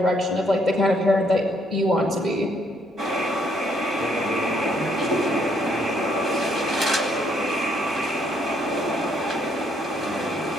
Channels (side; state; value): both; normal; correlation 0.70